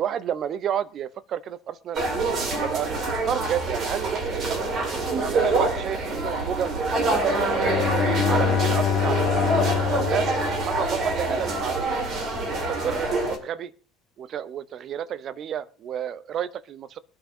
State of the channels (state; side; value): normal; both; correlation 0.50